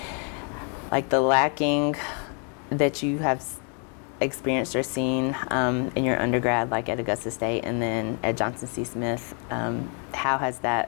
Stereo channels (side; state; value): right; quieter; 38.9 dB